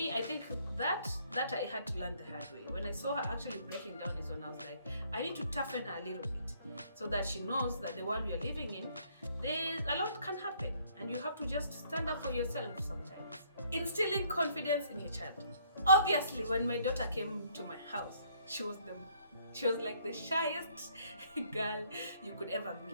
I think that I had to learn the hard way. When I saw her actually breaking down is when I was like, I need to toughen her a little bit so that she knows that the world we are living in, a lot can happen, and you have to just stand up for yourself sometimes. Instilling confidence in your child. Obviously, when my daughter came to my house, she was like the shyest girl you could ever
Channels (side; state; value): both; inverted; correlation -0.65